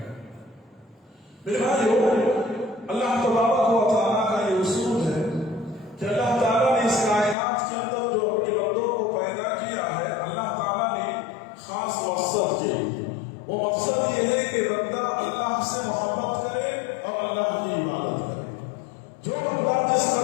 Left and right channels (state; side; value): drops out; right; at 7.4 s